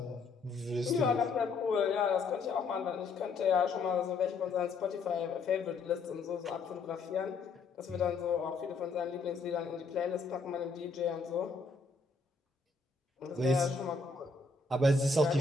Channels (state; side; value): quieter; right; 4.1 dB